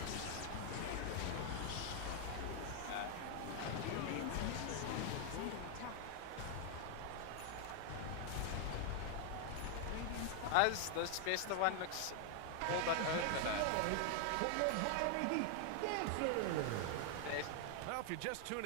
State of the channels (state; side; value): different; both; correlation 0.00